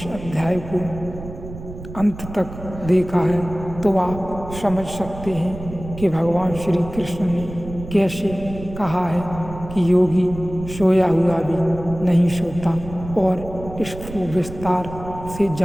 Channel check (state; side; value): noise; right; rumble, 12 dB below the sound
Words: अध्याय को अंत तक देखा है तो आप समझ सकते हैं कि भगवान श्री कृष्ण ने कैसे कहा है कि योगी सोया हुआ भी नहीं सोता। और इसको विस्तार से